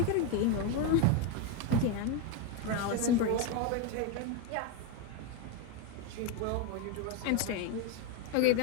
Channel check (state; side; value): different; both; correlation 0.02